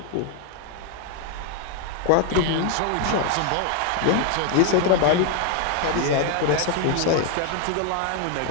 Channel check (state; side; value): different; both; correlation 0.01